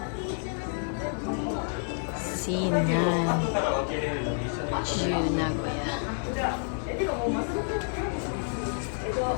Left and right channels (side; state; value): right; silent; 58 dB below the other